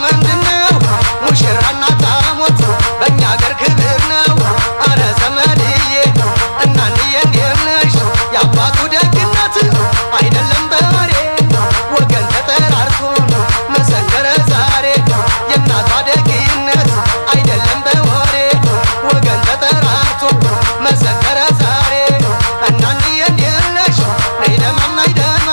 ምንድነው ሙሽራና ታሞት በእኛ አገር ክብር ነው አረ ዘመድዬ እናንዬ እንዴት ነሽ የአባቱ ደግነት አይደለም በወሬ ወገን ተጠራርቶ መሰከረ ዛሬ የእናቷ ደግነት አይደለም በወሬ ወገን ተጠራርቶ መሰከረ ዛሬ እናንዬ እንዴት ነሽ ነይ ደማም ነይ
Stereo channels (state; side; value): inverted; both; correlation -1.00